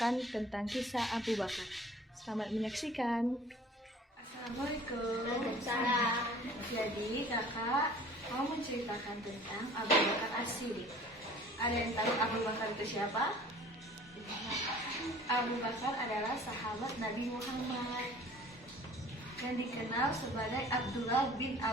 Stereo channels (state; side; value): normal; both; correlation 0.49